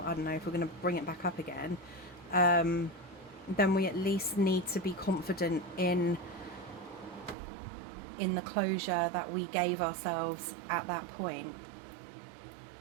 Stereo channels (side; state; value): left; drops out; at 7.4 s